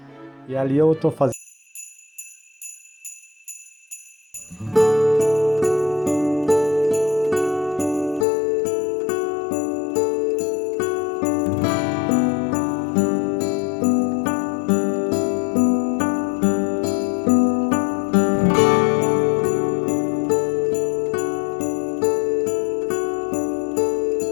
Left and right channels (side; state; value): right; drops out; at 8.2 s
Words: E ali eu tô fazendo.